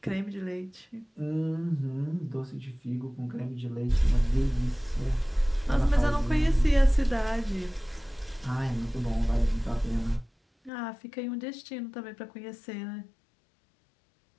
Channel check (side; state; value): right; drops out; at 10.7 s